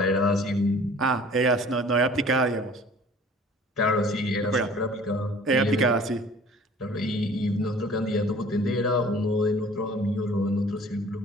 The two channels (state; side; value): normal; both; correlation 0.49